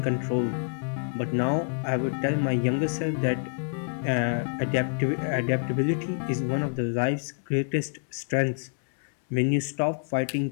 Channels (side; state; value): right; silent; 60 dB below the other